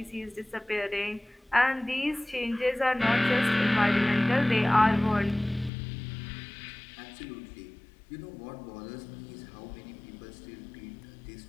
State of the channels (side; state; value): right; drops out; at 5.7 s